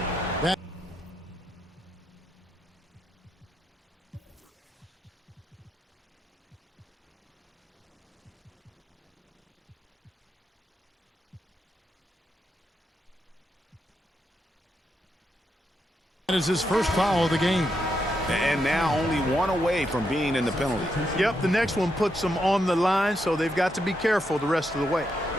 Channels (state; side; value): normal; both; correlation 0.82